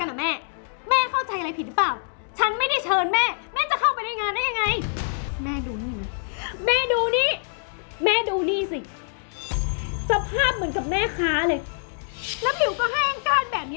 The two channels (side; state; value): right; silent; digital silence